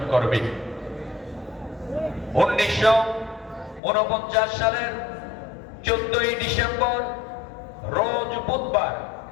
করবে। 1949 সালের 14ই ডিসেম্বর রোজ বুধবার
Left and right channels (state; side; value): drops out; right; at 3.8 s